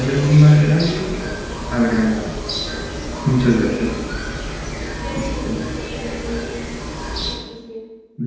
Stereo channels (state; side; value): identical; both; correlation 1.00